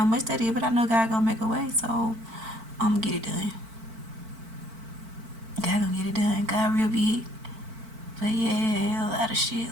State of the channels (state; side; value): late; left; 4.5 ms